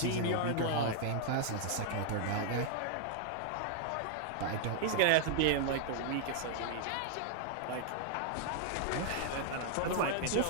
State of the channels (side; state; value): both; different; correlation -0.01